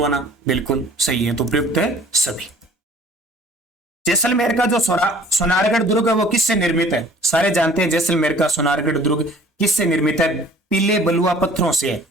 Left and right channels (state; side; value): normal; both; correlation 0.52